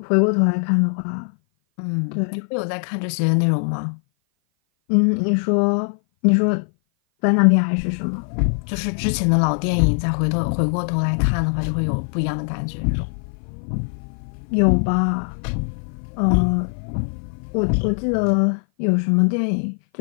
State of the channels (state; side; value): silent; right; 57 dB below the other